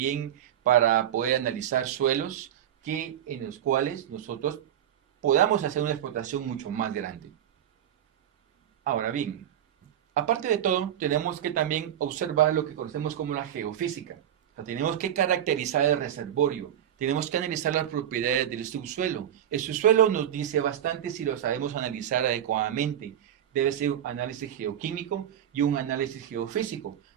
para poder analizar suelos en los cuales nosotros podamos hacer una explotación mucho más grande. Ahora bien, aparte de todo, tenemos que también observar lo que conocemos como la geofísica. O sea, tenemos que caracterizar el reservorio, tenemos que analizar las propiedades del subsuelo. El subsuelo nos dice bastante si lo sabemos analizar adecuadamente. Debe ser un análisis geoquímico y un análisis geofísico,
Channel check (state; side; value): quieter; left; 10.6 dB